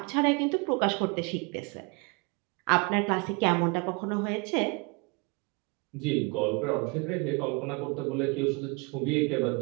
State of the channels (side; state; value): left; quieter; 31.2 dB